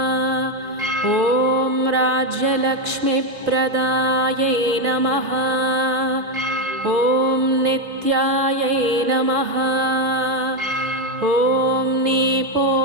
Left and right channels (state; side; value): late; left; 3.7 ms